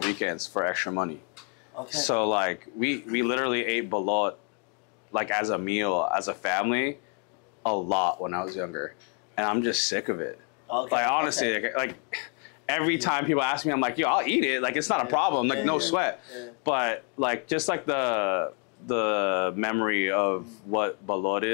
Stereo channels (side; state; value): right; quieter; 39.1 dB